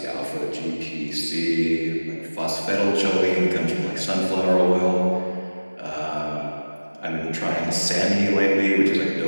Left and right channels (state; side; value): inverted; both; correlation -1.00